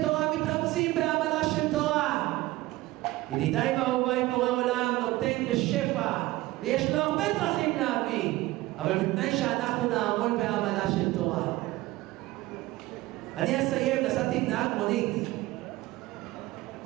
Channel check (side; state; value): left; quieter; 18.3 dB